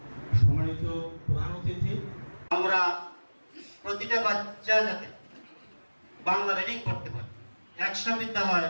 সম্মানিত প্রধান অতিথি, আমরা প্রতিটা বাচ্চা যাতে বাংলা রিডিং করতে পারে, 100 বিদ্যালয়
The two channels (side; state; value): both; inverted; correlation -1.00